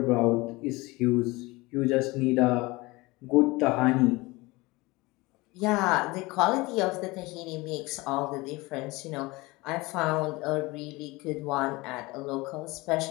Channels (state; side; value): quieter; right; 22.6 dB